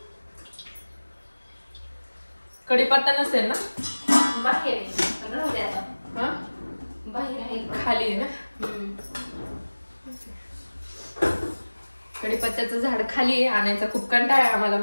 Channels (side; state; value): both; inverted; correlation -1.00